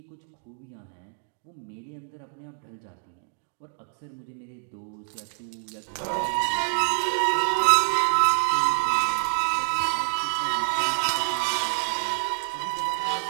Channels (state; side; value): silent; left; digital silence